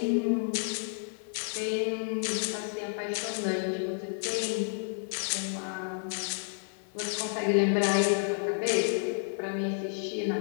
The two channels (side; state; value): right; silent; 57 dB below the other